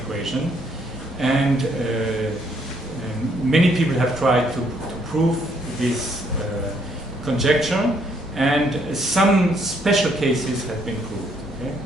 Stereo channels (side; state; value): both; normal; correlation 0.69